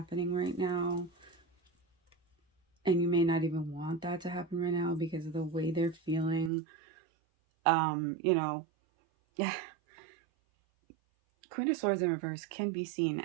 right now. And you may not even want that to happen right now because of the way they're feeling. Yeah. Queen of Swords in reverse can be seen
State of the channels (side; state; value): left; drops out; at 6.5 s